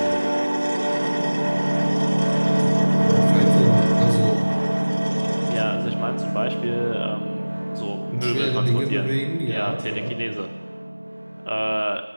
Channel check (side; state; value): both; inverted; correlation -1.00